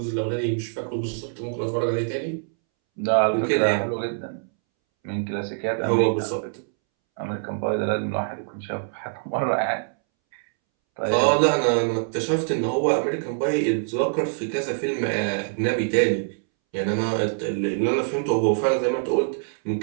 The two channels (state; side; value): silent; left; 62 dB below the other